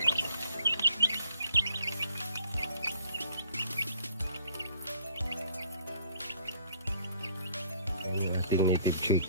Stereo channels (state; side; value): inverted; both; correlation -0.59